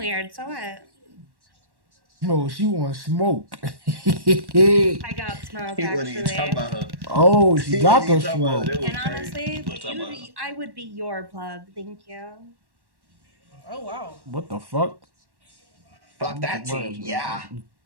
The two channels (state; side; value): late; left; 1.1 ms